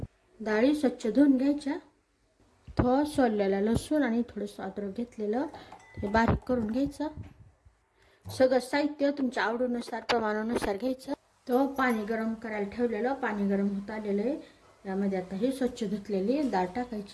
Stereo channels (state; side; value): identical; both; correlation 1.00